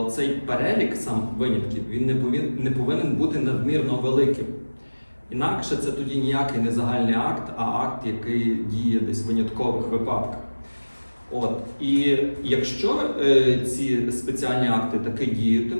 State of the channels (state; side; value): inverted; both; correlation -1.00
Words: цей перелік сам винятків він не повинен бути надмірно великим. Інакше це тоді ніякий не загальний акт, а акт, який діє десь в виняткових випадках. І якщо ці спеціальні акти таки